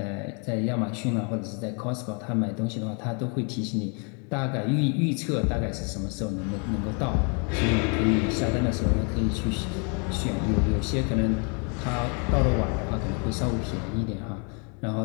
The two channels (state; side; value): quieter; right; 36.7 dB